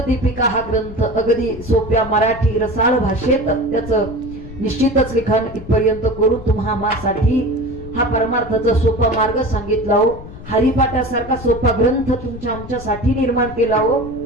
दीपिका हा ग्रंथ अगदी सोप्या मराठी रसाळ भाषेत त्याचं निश्चितच लिखाण इथपर्यंत करून तुम्हा आम्हासाठी हा परमार्थाचा सोपा मार्ग सांगितला हो। हरिपाठासारखा सोपा ग्रंथ तुमच्या आमच्यासाठी निर्माण केला हो।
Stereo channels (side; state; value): left; noise; rumble, 14 dB below the sound